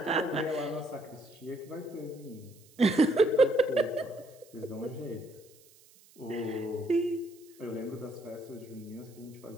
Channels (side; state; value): right; noise; hiss, 26 dB below the sound